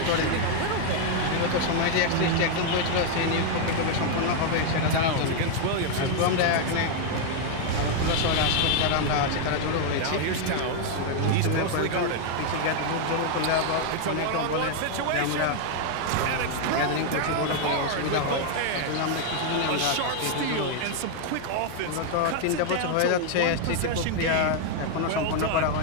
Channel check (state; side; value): different; both; correlation 0.00